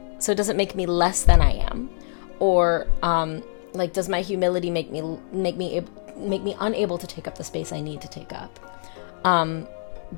So does it make me less than I am? Or, like, does my humility make me unable to take up the space I need to take up?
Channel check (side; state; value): right; silent; digital silence